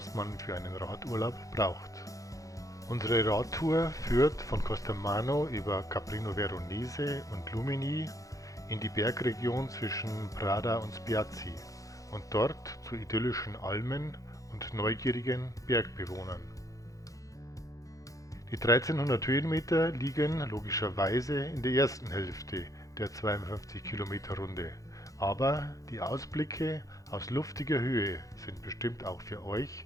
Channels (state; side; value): late; right; 0.16 ms